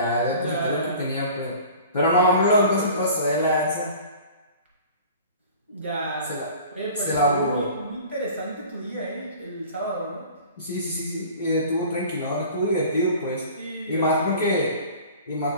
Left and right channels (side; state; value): both; inverted; correlation -0.44